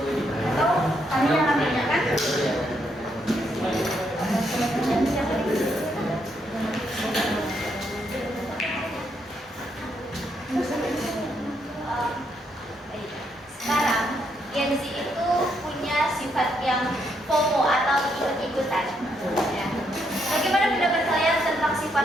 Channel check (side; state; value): both; normal; correlation 0.76